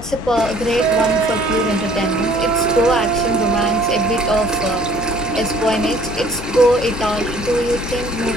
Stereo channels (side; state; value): both; normal; correlation 0.57